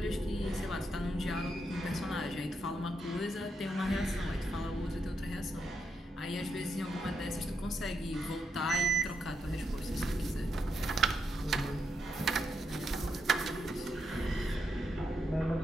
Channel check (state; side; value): normal; both; correlation 0.82